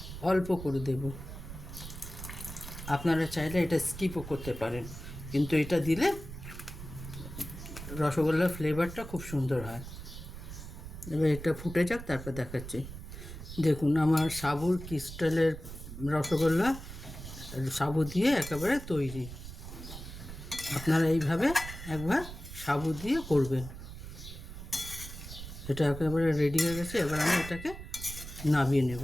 অল্প করে দেব, আপনারা চাইলে এটা স্কিপও করতে পারেন, কিন্তু এটা দিলে রসগোল্লার ফ্লেভারটা খুব সুন্দর হয়। এবার এটা ফুটে যাক, তারপর দেখাচ্ছি। দেখুন আমার সাবুর ক্রিস্টালের রসগোল্লা সাবু দিয়ে একেবারে তৈরি। আপনারা এইভাবে একবার সাবু দিয়ে করবেন। এটা একেবারে রেডি হয়ে গেছে, এবার আমি এটাকে নামিয়ে নেব।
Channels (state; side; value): noise; right; rumble, 11 dB below the sound